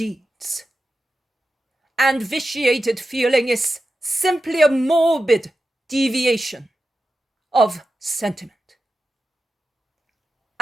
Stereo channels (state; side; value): normal; both; correlation 0.91